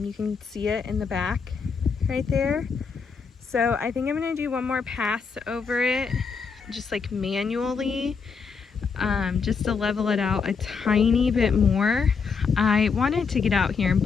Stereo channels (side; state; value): right; quieter; 5.5 dB